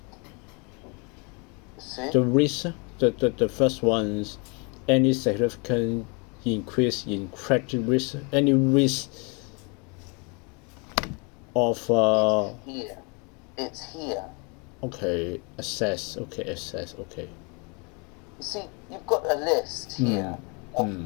See? The risk, the first one's any significant increase in credit risk, any risk of It's here. Okay, assess. Okay. You see, you've got a list here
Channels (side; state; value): right; quieter; 32.2 dB